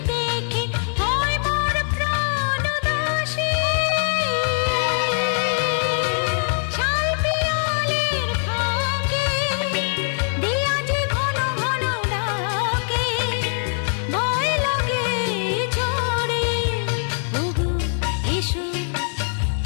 দেখে হয় মোর প্রাণ দাসী শাল পিয়ালের ফাঁকে দিয়া যে ঘন ঘন ডাকে ভয় লাগে ঝড়ে ওগো এসো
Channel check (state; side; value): silent; right; digital silence